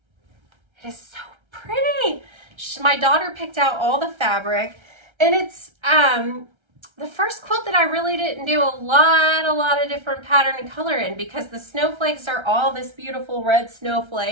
It is so pretty. My daughter picked out all the fabric, and it's the first quilt that I really didn't do a lot of different pattern and color in, because the snowflakes are all this beautiful red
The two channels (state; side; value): late; left; 1.3 ms